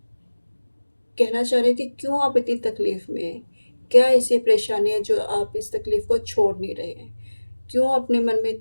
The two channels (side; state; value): both; inverted; correlation -1.00